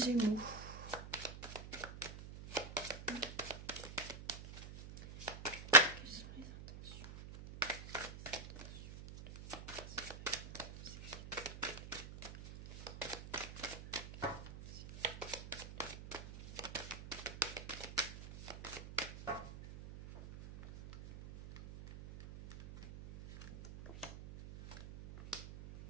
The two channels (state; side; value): noise; right; hum, 12 dB below the sound